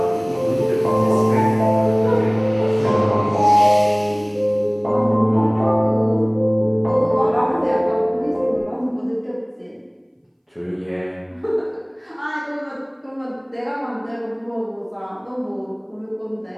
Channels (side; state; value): both; identical; correlation 1.00